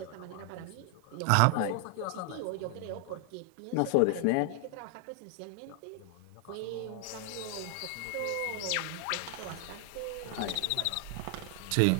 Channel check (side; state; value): both; different; correlation 0.00